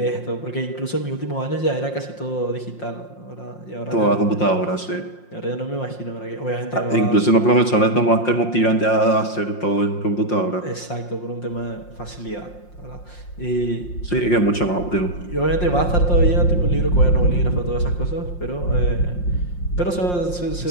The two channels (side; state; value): right; late; 5.6 ms